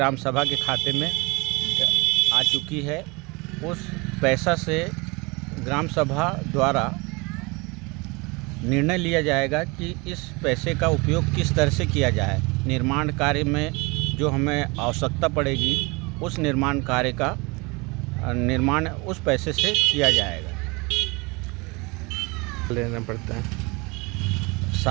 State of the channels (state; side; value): quieter; left; 26.8 dB